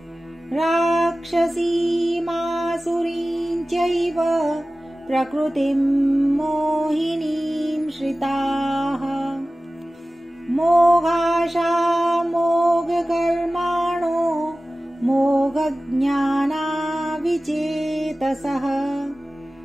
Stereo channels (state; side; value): normal; both; correlation 0.96